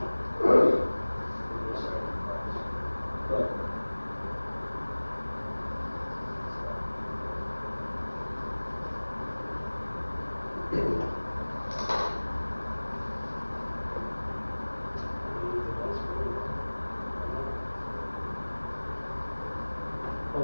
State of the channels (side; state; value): both; inverted; correlation -1.00